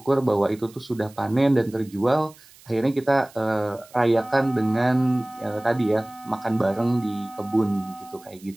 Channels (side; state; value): right; noise; hiss, 25 dB below the sound